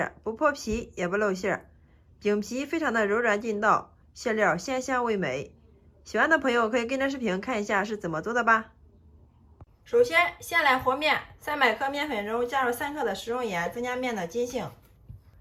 不破皮也不露馅，饼皮非常的柔软劲道，馅料鲜香味美。喜欢的朋友可以跟着视频看一下是怎么做的吧。首先，先来和面，300克面粉中加入3克的食用盐，增加面的筋性。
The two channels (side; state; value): both; identical; correlation 1.00